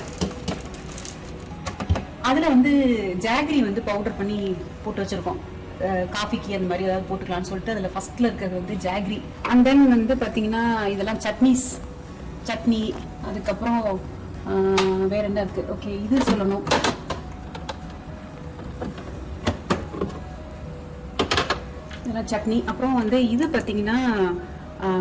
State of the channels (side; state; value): both; identical; correlation 1.00